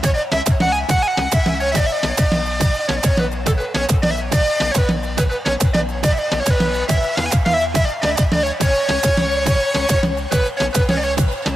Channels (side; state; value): both; normal; correlation 0.92